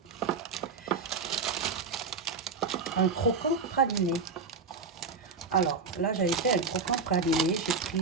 un croquant praliné. Alors là, j'avais fait un croquant praliné. J'ai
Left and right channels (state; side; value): quieter; left; 4.7 dB